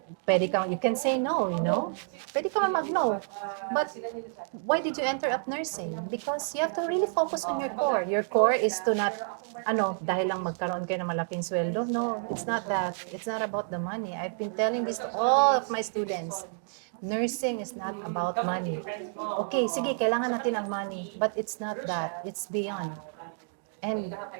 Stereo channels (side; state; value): left; silent; digital silence